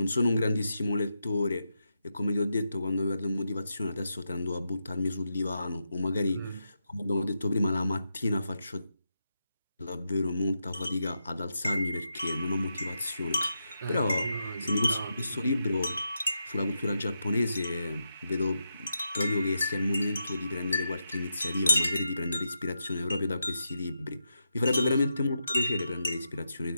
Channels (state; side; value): inverted; both; correlation -0.86